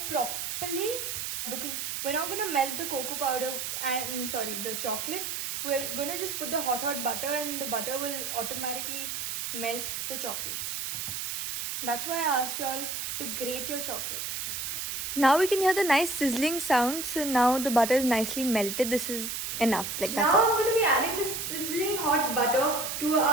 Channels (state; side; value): noise; right; hiss, 4 dB below the sound